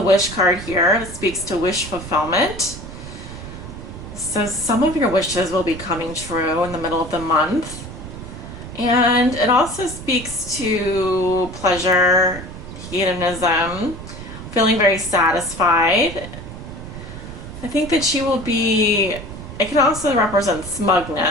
Wish card here. It speaks to wish fulfillment. So some of your wishes will be coming true in the middle of the month. And it also speaks to pleasure, hedonism, feeling very satisfied. I think that you will be, it can also represent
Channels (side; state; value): right; noise; rumble, 11 dB below the sound